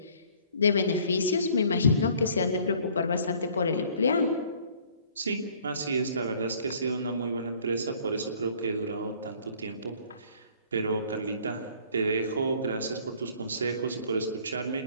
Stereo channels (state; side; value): inverted; both; correlation -0.56